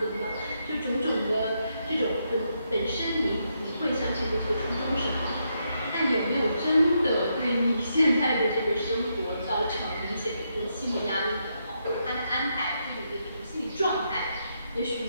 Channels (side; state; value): both; inverted; correlation -0.80